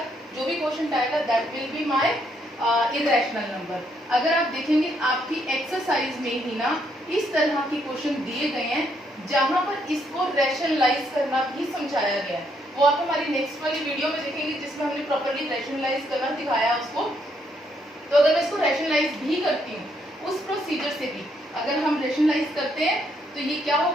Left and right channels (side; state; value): both; normal; correlation 0.73